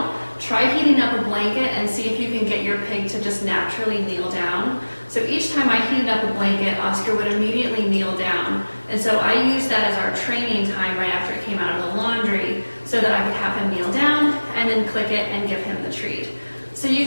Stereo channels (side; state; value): both; inverted; correlation -1.00